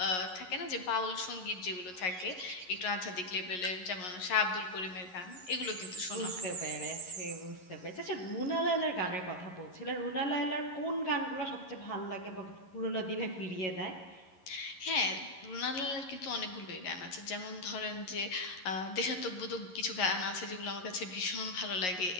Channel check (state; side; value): late; right; 11 ms